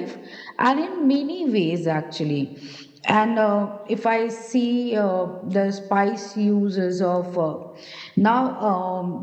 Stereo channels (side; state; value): both; identical; correlation 1.00